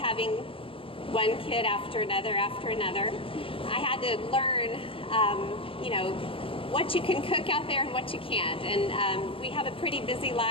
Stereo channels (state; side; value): late; right; 0.26 ms